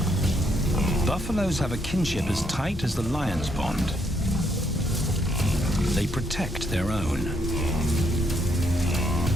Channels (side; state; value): both; normal; correlation 0.73